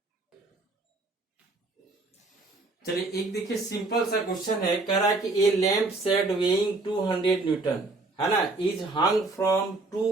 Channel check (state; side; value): quieter; left; 3.3 dB